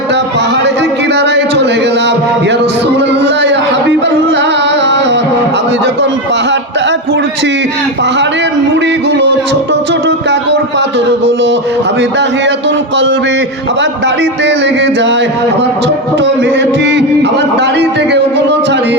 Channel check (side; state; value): both; normal; correlation 0.12